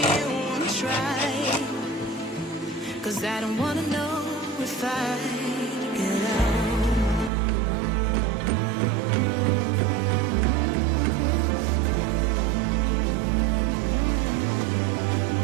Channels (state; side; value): drops out; left; at 7.3 s